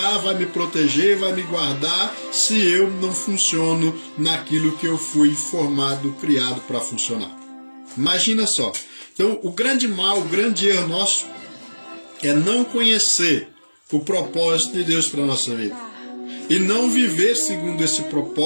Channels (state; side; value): inverted; both; correlation -1.00